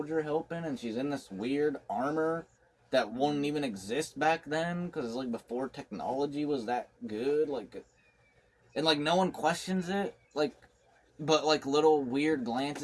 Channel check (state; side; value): identical; both; correlation 1.00